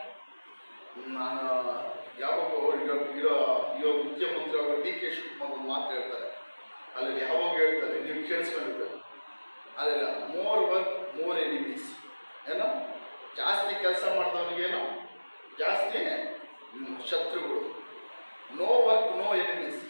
ನಾನು ಯಾವಾಗ ಇರೋ ಮುಖ್ಯಮಂತ್ರಿ ಅವರು ಡಿ ಕೆ ಶಿವಕುಮಾರ್ ಮಾತು ಹೇಳ್ತಾರೆ, ಅಲ್ಲಿ ಯಾವಾಗ ಹೇಳ್ತಾರೆ ನೀವು ಕೇಳಿಸ್ಕೊಂಡಿರ್ಬೇಕು, ಅಲ್ಲೆಲ್ಲ ಮೋರ್ ವರ್ಕ್ ಮೋರ್ ಎನಿಮೀಸ್. ಏನೋ ಜಾಸ್ತಿ ಕೆಲಸ ಮಾಡಿದವನಿಗೇನೋ ಜಾಸ್ತಿ ಶತ್ರುಗಳು. No work no enemies.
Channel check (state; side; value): inverted; both; correlation -1.00